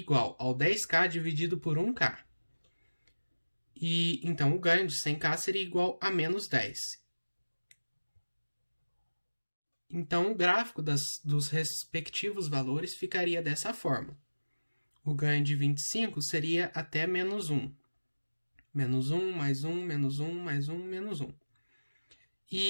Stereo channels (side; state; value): both; inverted; correlation -1.00